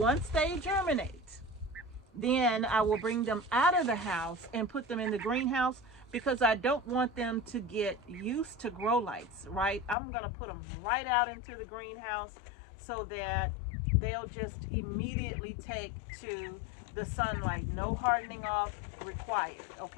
they germinate, then I will bring them out of the house and put them in the greenhouse because I don't want them to get used to grow lights, right? I'm going to put them right out into the greenhouse so that they'll just immediately take to the sunlight. No hardening off required,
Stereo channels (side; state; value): right; drops out; at 10.0 s